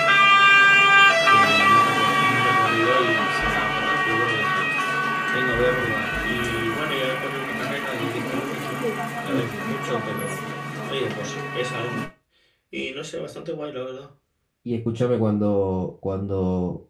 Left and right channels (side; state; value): both; identical; correlation 1.00